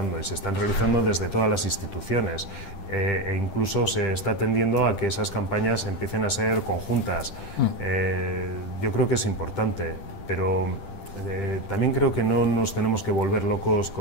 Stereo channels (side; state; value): right; late; 10 ms